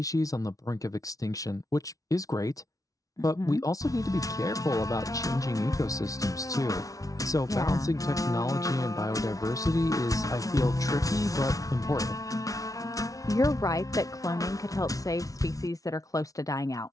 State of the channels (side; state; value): right; late; 0.17 ms